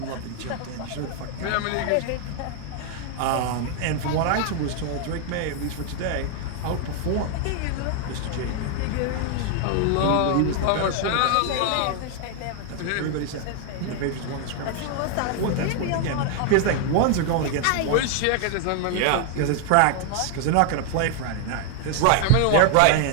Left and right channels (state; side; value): different; both; correlation 0.00